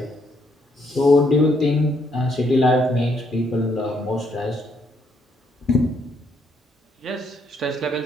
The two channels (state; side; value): normal; both; correlation 0.72